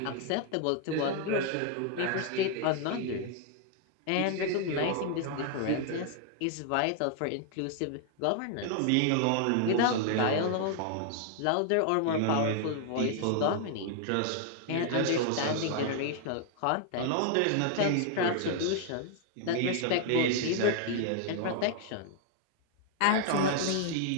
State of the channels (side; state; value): both; different; correlation 0.00